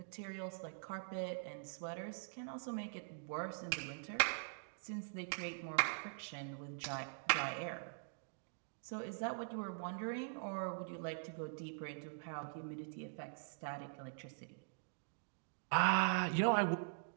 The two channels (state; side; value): silent; left; digital silence